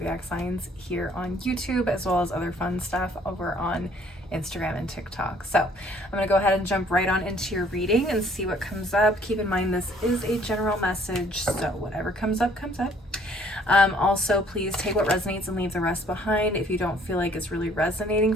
signs here on YouTube, as well as other fun stuff over on Instagram and TikTok. So I'm going to go ahead and jump right on into your reading and see what comes up. Keep in mind this is a general message, so whatever comes up, comes up. Also, please take what resonates and leave the rest behind. If you don't feel like it's really resonating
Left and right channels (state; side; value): normal; both; correlation 0.60